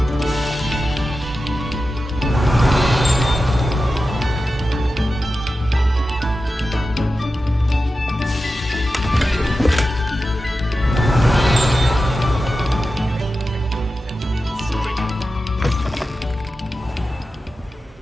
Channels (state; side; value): normal; both; correlation 0.92